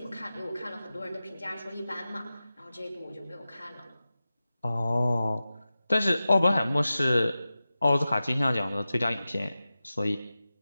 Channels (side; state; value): both; inverted; correlation -0.95